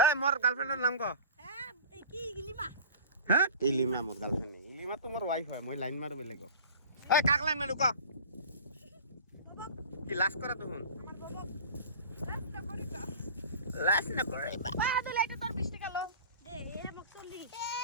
এ মোর গার্লফ্রেন্ডের নাম ক হ্যাঁ ইলিমা মোর গার্লফ্রেন্ড ইলিমা তো মোর ওয়াইফ হয় মই লাইন মারো বেলেগ এ কাক লাইন মারু ক কি লাস্ট করা তখন লাস্ট না করে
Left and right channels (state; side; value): inverted; both; correlation -0.39